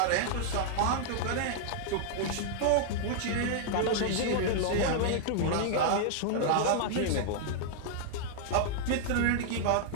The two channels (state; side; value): different; both; correlation -0.01